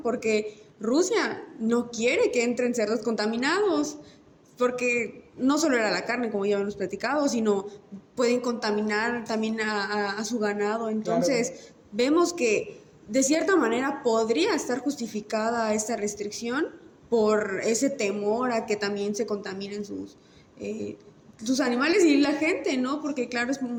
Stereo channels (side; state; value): both; identical; correlation 1.00